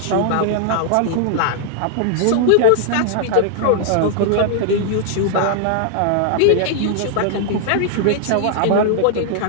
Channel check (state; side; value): different; both; correlation -0.01